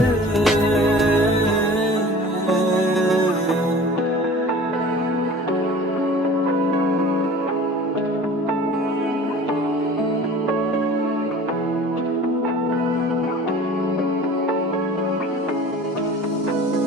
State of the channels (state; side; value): normal; both; correlation 0.43